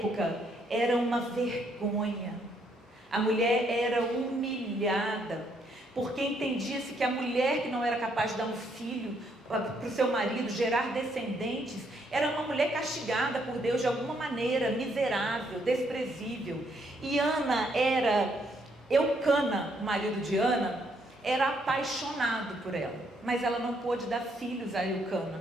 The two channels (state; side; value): normal; both; correlation 0.72